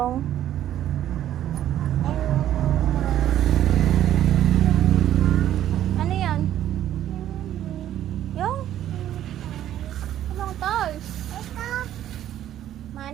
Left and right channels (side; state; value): left; quieter; 11.8 dB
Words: ano yan? Yung anong toys?